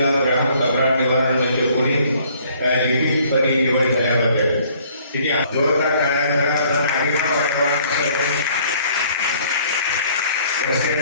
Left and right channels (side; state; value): both; inverted; correlation -0.59